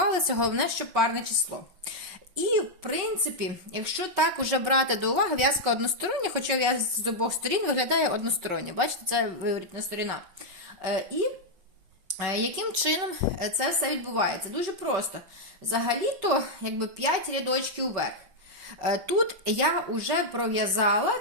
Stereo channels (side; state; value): left; late; 5.3 ms